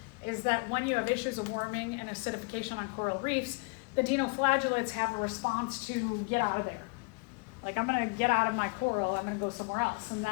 is that when you have issues of warming and acidification on coral reefs, the dinoflagellates have a response to get out of there. Like, I'm gonna get out of my coral, I'm gonna go somewhere else. And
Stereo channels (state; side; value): quieter; right; 32.6 dB